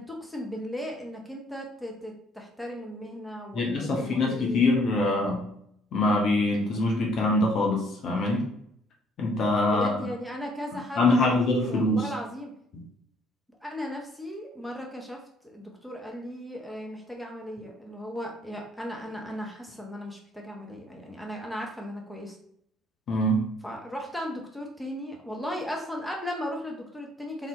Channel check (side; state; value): both; normal; correlation 0.64